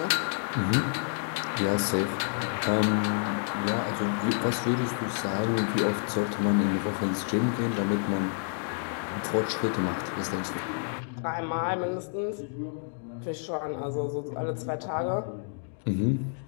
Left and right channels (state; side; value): silent; right; digital silence